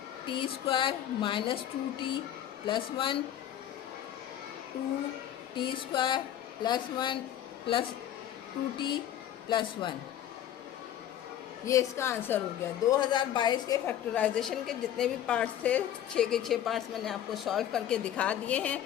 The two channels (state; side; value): quieter; right; 11.0 dB